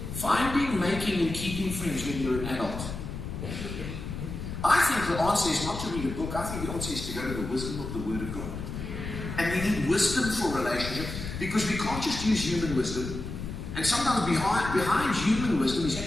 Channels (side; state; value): left; noise; rumble, 7 dB below the sound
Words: Finding, making, and keeping friends when you're an adult. I think the answer is not to read a book. I think the answer is to go to the wisdom of the Word of God. And we need wisdom for relationship because we can't just use human wisdom. And sometimes behind human wisdom is